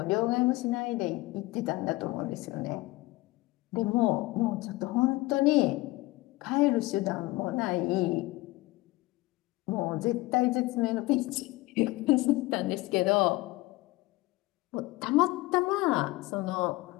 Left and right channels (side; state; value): right; quieter; 20.3 dB